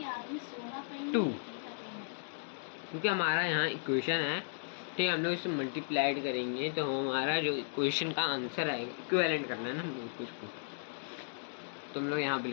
2, क्योंकि हमारा यहाँ इक्वेशन है ठीक है, हम लोग इससे मल्टीप्लाइड करेंगे तो हमारा जो क्वेश्चन का आंसर आएगा, इक्विवेलेंट करना है ना हम लोग कुछ को, तो हम लोग यहाँ पे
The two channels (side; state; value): right; silent; digital silence